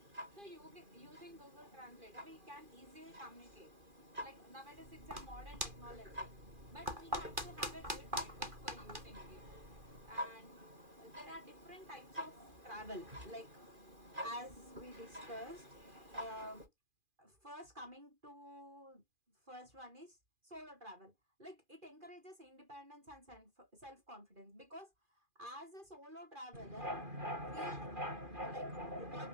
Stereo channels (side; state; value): left; late; 2.4 ms